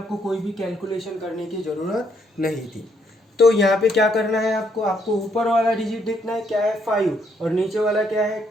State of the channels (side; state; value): both; normal; correlation 0.72